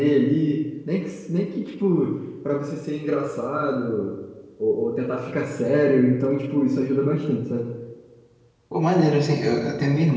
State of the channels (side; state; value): both; identical; correlation 1.00